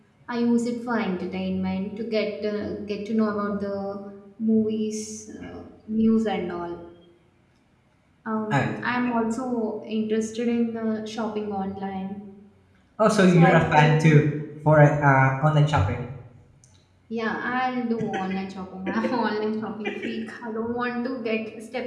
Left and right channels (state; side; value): identical; both; correlation 1.00